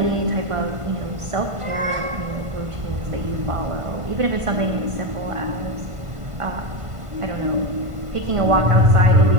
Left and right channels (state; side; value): late; left; 1.5 ms